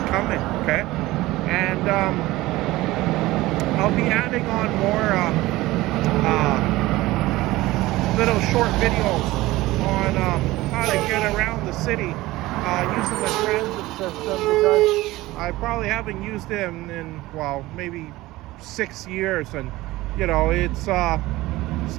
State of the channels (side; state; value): left; quieter; 18.4 dB